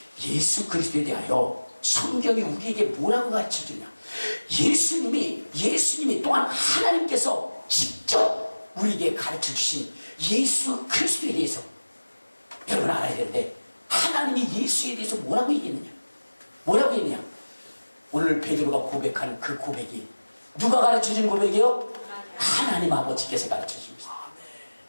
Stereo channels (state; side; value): inverted; both; correlation -1.00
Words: 예수 그리스도에 대하여 성경이 우리에게 뭐라고 가르쳐주냐? 예수님이 또한 하나님께서 직접 우리에게 가르쳐주신 예수 그리스도에 대해서 여러분 알아야 되는데, 하나님이 예수에 대해서 뭐라고 얘기했느냐? 뭐라고 했느냐? 오늘 베드로가 고백한 그 고백이 누가 가르쳐준 고백이요? 하나님 아버지께서 가르쳐주신 것입니다.